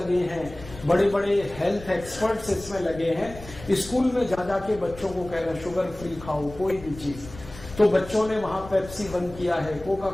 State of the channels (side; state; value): left; noise; rumble, 16 dB below the sound